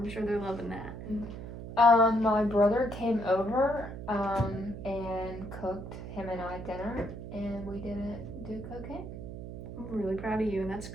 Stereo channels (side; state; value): right; noise; hum, 9 dB below the sound